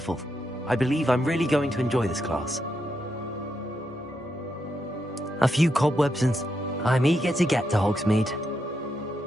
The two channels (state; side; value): normal; both; correlation 0.82